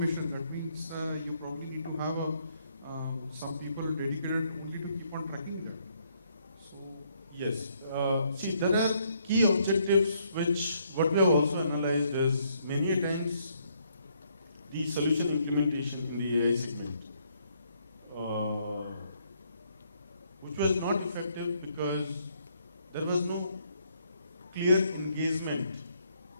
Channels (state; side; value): inverted; both; correlation -0.71